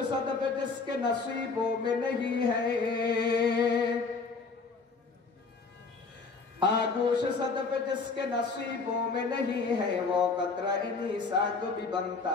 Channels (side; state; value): right; quieter; 4.4 dB